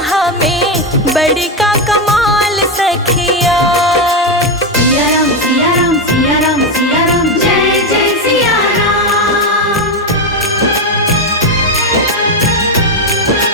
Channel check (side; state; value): both; normal; correlation 0.09